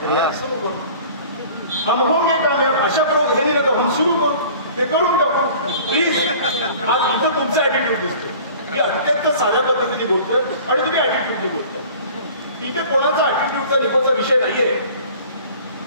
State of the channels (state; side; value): inverted; both; correlation -0.46